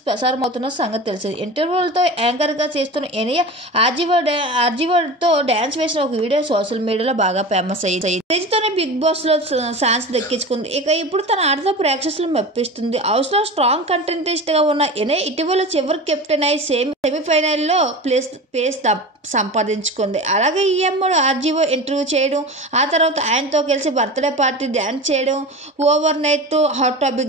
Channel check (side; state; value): both; normal; correlation 0.31